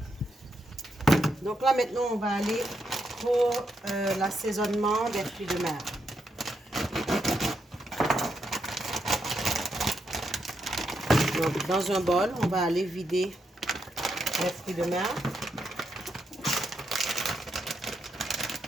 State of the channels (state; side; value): normal; both; correlation 0.81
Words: Donc là, maintenant, on va aller pour l'assaisonnement des fruits de mer. Donc, dans un bol, on va aller vider les fruits de mer.